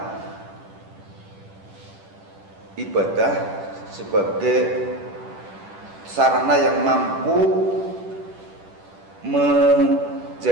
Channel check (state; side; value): late; left; 10 ms